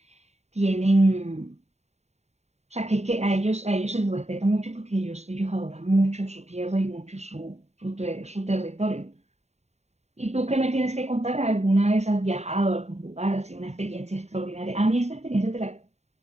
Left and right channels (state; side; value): late; left; 0.32 ms